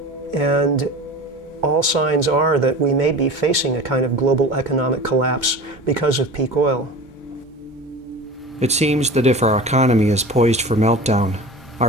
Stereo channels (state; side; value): normal; both; correlation 0.36